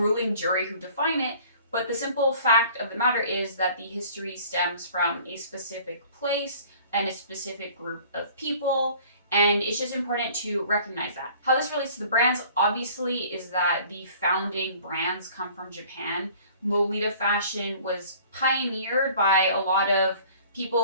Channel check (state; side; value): inverted; both; correlation -0.50